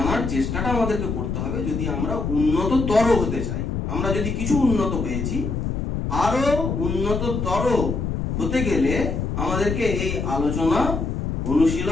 চেষ্টাটা আমাদেরকে করতে হবে যদি আমরা উন্নততর হতে চাই। আমরা যদি কিছু উন্নত হয়েছি, আরো উন্নততর হতে গেলে আমাদেরকে এই আলোচনা,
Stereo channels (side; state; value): left; noise; rumble, 2 dB below the sound